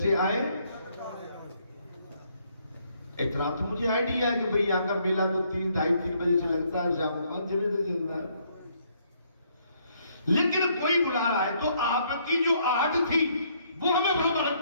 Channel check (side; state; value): both; inverted; correlation -0.69